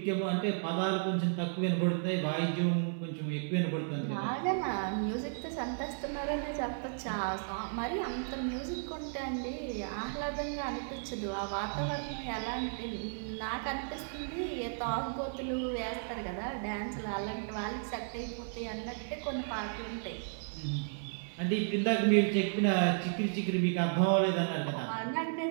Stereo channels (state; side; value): silent; left; 55 dB below the other